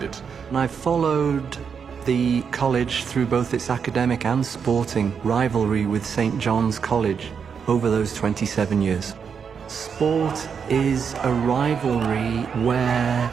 it. And I followed the college through both its academic and sporting rivalry with St. John's College over those 27 years. Sport is a rivalry where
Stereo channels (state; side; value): quieter; left; 6.6 dB